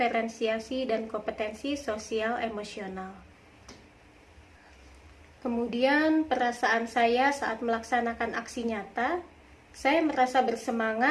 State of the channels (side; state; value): both; identical; correlation 1.00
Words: dan kompetensi sosial emosional. Kemudian perasaan saya saat melaksanakan aksi nyata, saya merasa